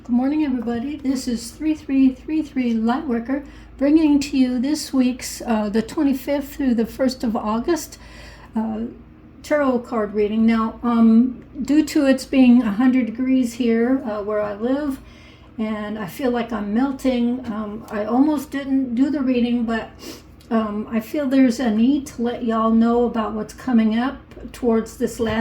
Good morning, everybody. This is 3333 Lightworker bringing to you this week's, the 25th through the 1st of August, uh, tarot card reading. Now, due to it's being 100 degrees here where I live, and I feel like I'm melting, I almost didn't do the reading, but I feel there's a need to let y'all know about what's coming up towards this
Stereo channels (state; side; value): identical; both; correlation 1.00